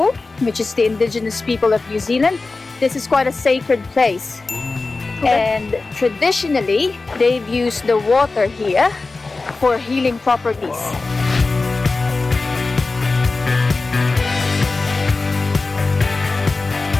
which is the indigenous people of New Zealand, this is quite a sacred place. And traditionally, they've used the water here for healing properties.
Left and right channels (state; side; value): quieter; right; 3.7 dB